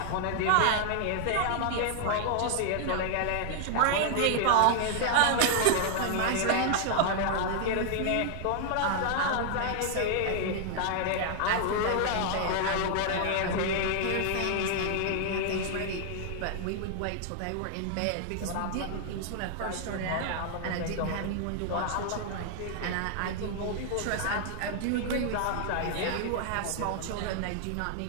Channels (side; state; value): both; different; correlation 0.00